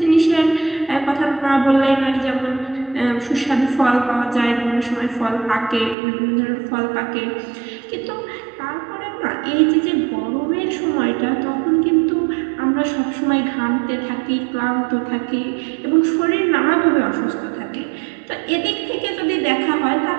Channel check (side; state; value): left; drops out; at 6.0 s